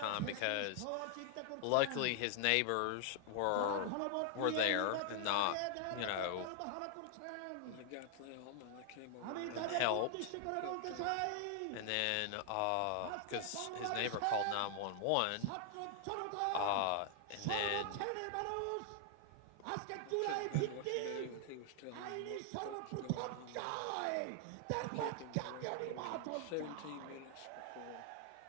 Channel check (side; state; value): both; different; correlation 0.00